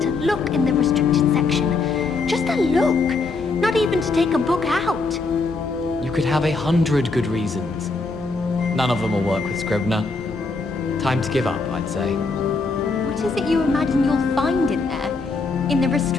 look in the restricted section. Just a look. Not even to take a book out. You could have 100 good reasons. None of them will work with Scribner. Time to give up, I'd say. What is it you imagine you'll find in there? In the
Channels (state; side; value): quieter; right; 3.9 dB